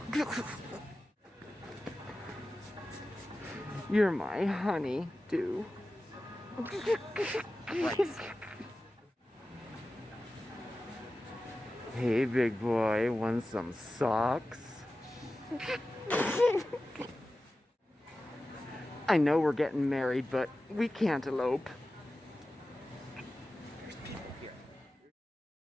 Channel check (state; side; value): normal; both; correlation 0.94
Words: You're my honey, dew. Hey, big boy, want some socks? I know we're getting married, but we can't elope. There's people here.